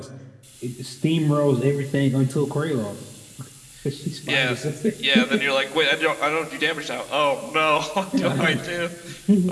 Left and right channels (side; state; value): both; identical; correlation 1.00